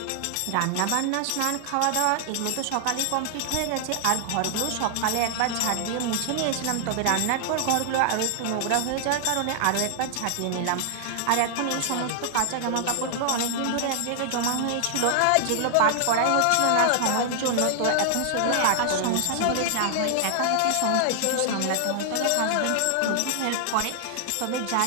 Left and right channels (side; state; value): both; different; correlation 0.00